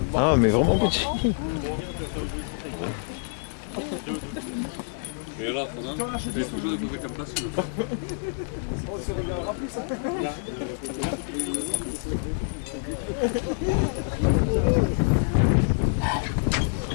Ah, mais vraiment petits. Et là, je vais toujours découvrir comme place.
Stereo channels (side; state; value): right; silent; digital silence